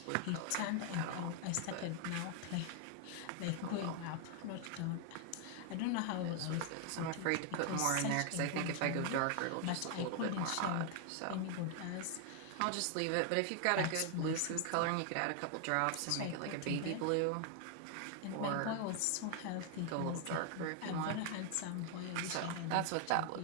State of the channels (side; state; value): both; different; correlation 0.00